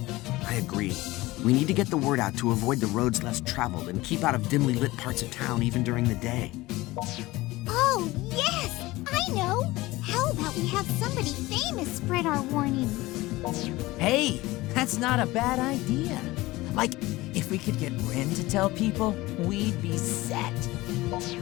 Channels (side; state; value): right; quieter; 19.4 dB